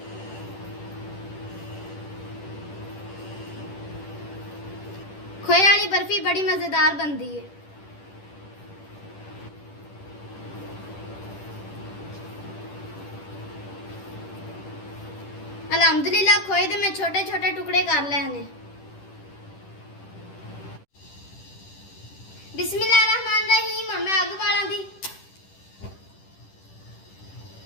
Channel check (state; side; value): late; right; 10 ms